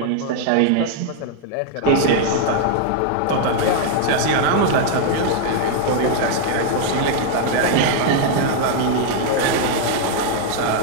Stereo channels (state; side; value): different; both; correlation 0.00